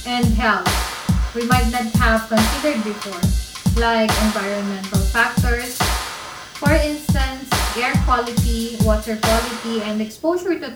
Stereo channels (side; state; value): both; identical; correlation 1.00